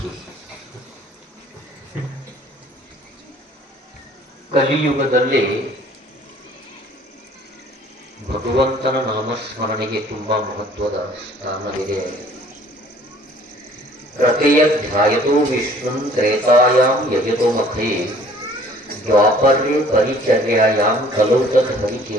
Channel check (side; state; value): both; normal; correlation 0.55